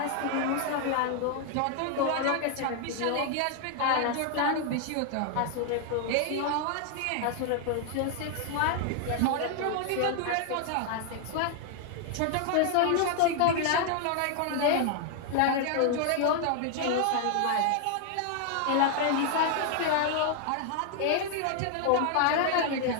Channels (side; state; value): both; different; correlation 0.00